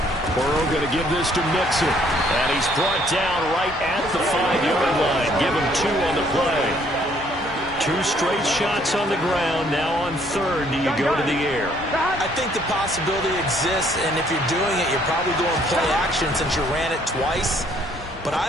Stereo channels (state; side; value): normal; both; correlation 0.64